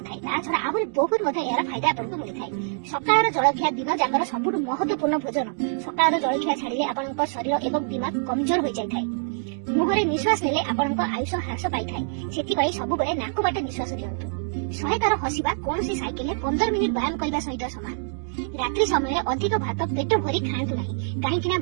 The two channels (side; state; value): left; silent; digital silence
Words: थाय। ता छडा आहुरी बहुत मते यार फायदा आपनक मिलि थाय। सकाळर जलखिया दिन जाकर सबुठ महत्वपूर्ण भोजन। सकाळर जलखिया छाडिले आपनक शरीर एवं दिमाग कमजोर हो जाय थाय। मुहरे निश्वास नेले आपनक आयुष ह्रास पाई थाय। सेति पई सब बेले नाक बाटे निश्वास लियंतु। 100 तार हसिबा कोनोसी साइकेल 15 मिनिट व्यायाम करबा सहित समान। रात्रि समय अधिक भात पेट भरी खाआंतु नाही, काहेकि